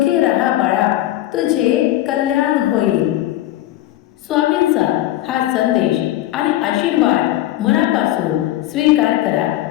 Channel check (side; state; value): right; quieter; 14.7 dB